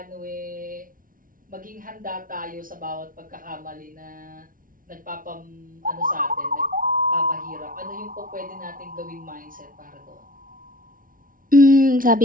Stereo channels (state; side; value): late; left; 0.40 ms